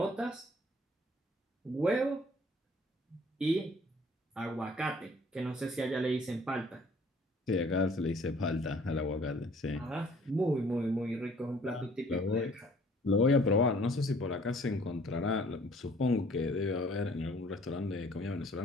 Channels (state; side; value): normal; both; correlation 0.56